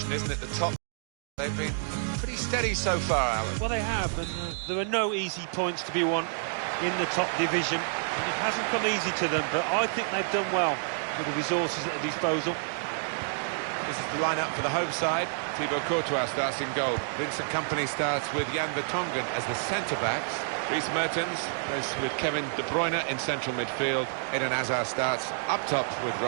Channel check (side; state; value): left; silent; digital silence